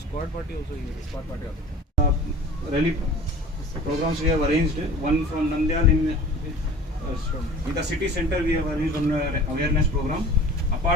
party also here. Squad party also. Rally programs we have arranged. One from Nandyal in the city center we have arranged one awareness program.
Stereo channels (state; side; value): normal; both; correlation 0.42